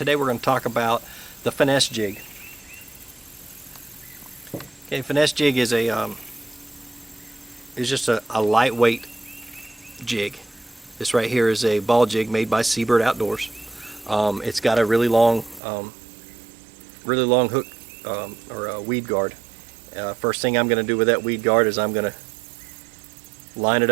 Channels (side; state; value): left; drops out; at 15.6 s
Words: we're going to talk about the Finesse Jig. Okay, Finesse Jig is just a lightweight jig. This right here is a ball jig made by Seabird Outdoors. It's got a really long hook or a weed guard. First thing I'm going to do with that weed guard is I'm going to line it